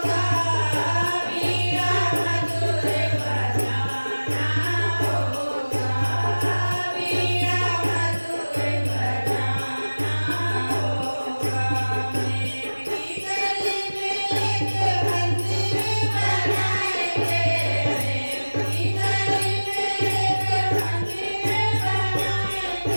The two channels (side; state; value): both; inverted; correlation -1.00